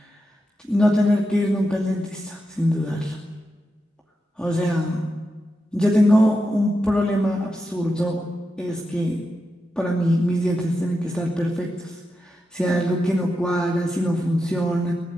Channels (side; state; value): both; normal; correlation 0.88